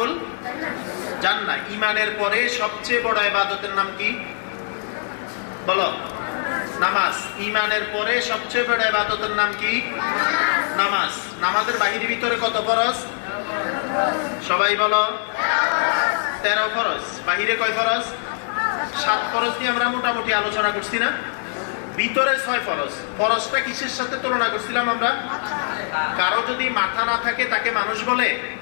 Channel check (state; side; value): silent; right; 62 dB below the other